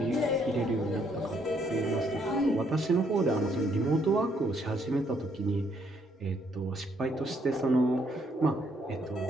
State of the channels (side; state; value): both; normal; correlation 0.70